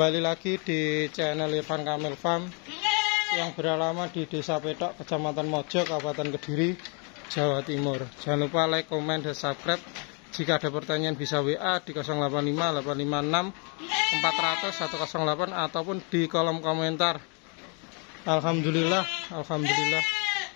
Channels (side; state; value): right; quieter; 35.7 dB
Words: lagi di channel Irfan Kamil Farm yang beralamat di Desa Petok, Kecamatan Mojo, Kabupaten Kediri, Jawa Timur. Jangan lupa like, komen, dan subscribe. Jika ada pertanyaan bisa WA di 085 856 400 108 ataupun di kolom komentar. Alhamdulillah.